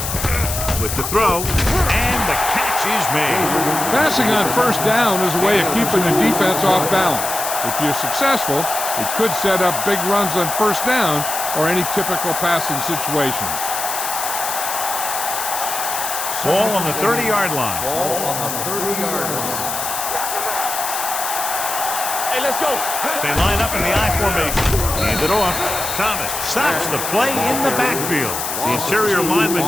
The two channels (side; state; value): left; noise; hiss, 4 dB below the sound